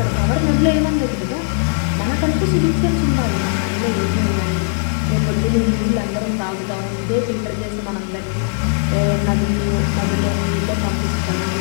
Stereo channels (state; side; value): silent; right; digital silence